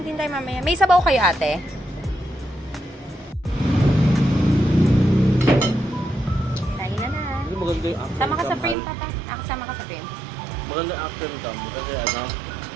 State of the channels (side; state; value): left; drops out; at 8.8 s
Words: din tayo mamaya. May sabaw kayo, ate? Tayo na na. Hindi maganda yung after Sama ka sa cam, frame, Al. tata. Sama ka sa frame. Maganda yung after cam. Kasi ano,